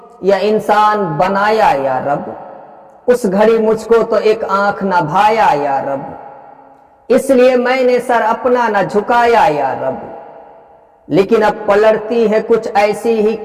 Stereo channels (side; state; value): both; identical; correlation 1.00